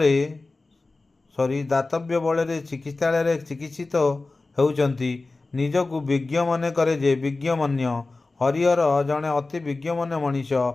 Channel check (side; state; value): right; quieter; 3.4 dB